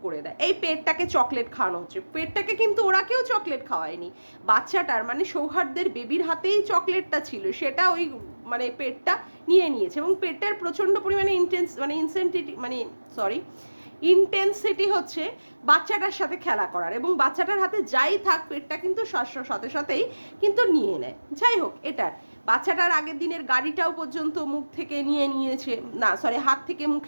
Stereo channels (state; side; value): inverted; both; correlation -1.00